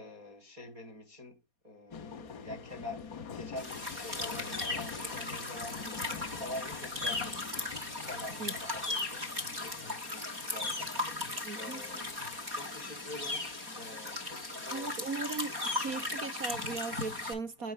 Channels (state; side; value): late; left; 4.2 ms